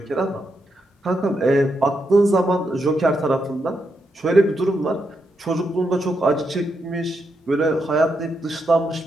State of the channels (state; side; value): normal; both; correlation 0.82